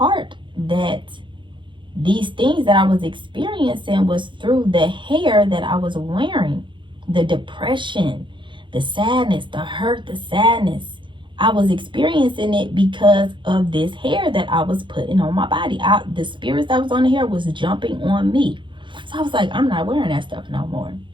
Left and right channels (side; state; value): left; late; 0.23 ms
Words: that these things that I was experiencing was through the hair that I was wearing. The depression, the sadness, the hurt, the sadness. I was experiencing it because of this hair that I was putting on my body. The spirits that was on the hair was jumping on me. So I was like, I'm not wearing that stuff no more.